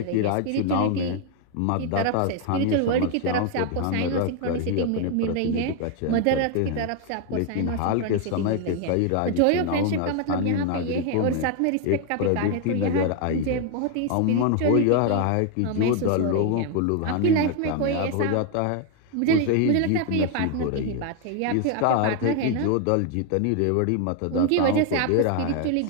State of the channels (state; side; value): different; both; correlation 0.01